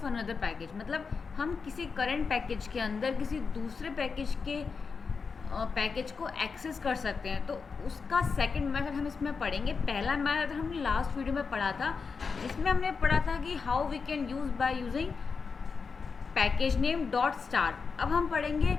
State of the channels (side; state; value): right; quieter; 5.1 dB